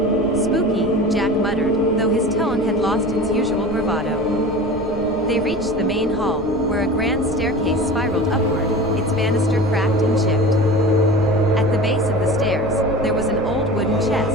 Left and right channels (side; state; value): left; noise; rumble, 14 dB below the sound